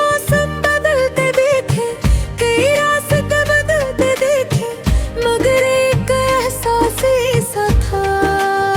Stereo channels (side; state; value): both; identical; correlation 1.00